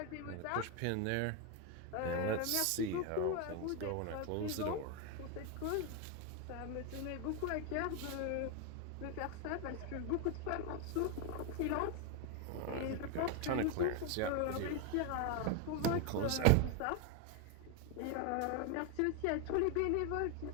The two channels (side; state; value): both; different; correlation 0.01